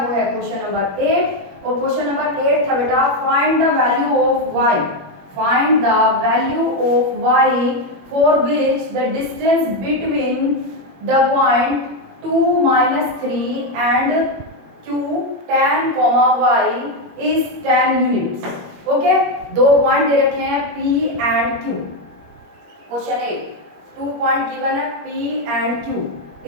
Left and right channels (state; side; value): late; left; 21 ms